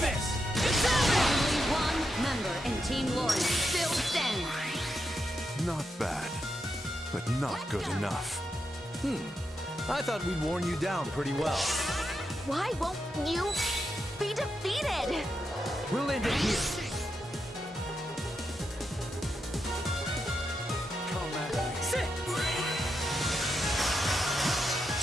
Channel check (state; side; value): normal; both; correlation 0.85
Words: It's over! Only one member in Team Lauren still stands. Not bad, but not good enough. I thought we'd worn you down pretty well. Why won't you be defeated? We'll end it here. Sit!